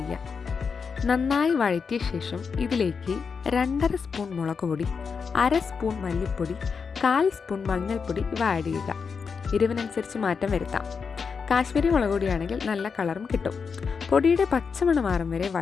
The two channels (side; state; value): right; quieter; 5.7 dB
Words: നന്നായി വഴറ്റിയ ശേഷം ഇതിലേക്ക് 2.5 സ്പൂൺ മുളക് പൊടി, 1/2 സ്പൂൺ മല്ലിപ്പൊടി, 1/4 സ്പൂൺ മഞ്ഞൾപ്പൊടി ഇവ ആഡ് ചെയ്യുക. എരിവിനനുസരിച്ച് മാറ്റം വരുത്താം. കാശ്മീരി മുളക് പൊടിയാണെങ്കിൽ നല്ല കളറും കിട്ടും. പൊടിയുടെ പച്ചമണം മാറും വരെ